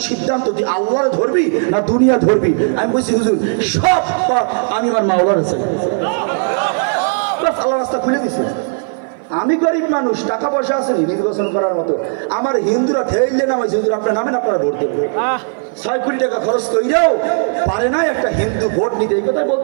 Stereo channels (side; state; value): left; silent; 56 dB below the other